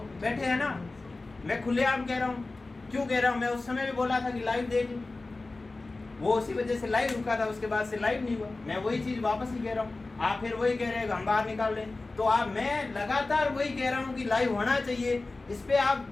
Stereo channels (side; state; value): right; quieter; 3.3 dB